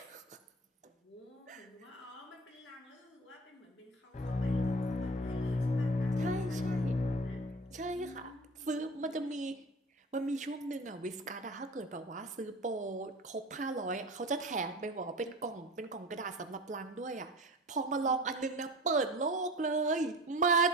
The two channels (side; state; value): both; normal; correlation 0.37